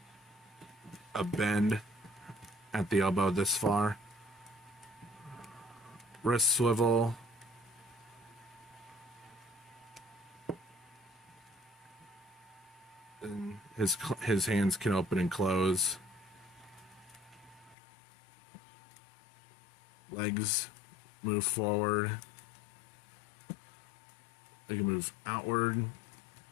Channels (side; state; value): right; drops out; at 17.8 s